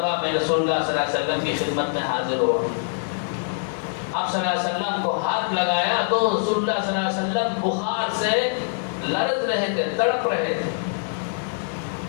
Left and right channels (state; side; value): silent; right; digital silence